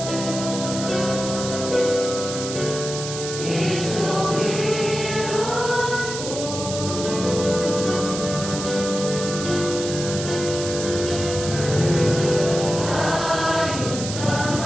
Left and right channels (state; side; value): noise; right; hiss, 7 dB below the sound